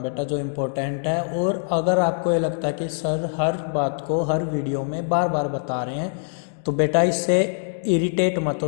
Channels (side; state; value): right; silent; 63 dB below the other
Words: बेटा, जो इम्पोर्टेंट है। और अगर आपको ये लगता है कि सर हर बात को हर वीडियो में बार बार बता रहे हैं, तो बेटा इससे इरिटेट मत